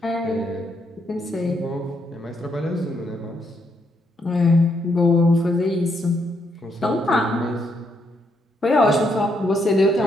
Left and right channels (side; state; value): both; normal; correlation 0.76